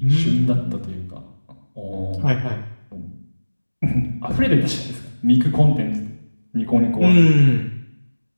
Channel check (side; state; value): both; inverted; correlation -1.00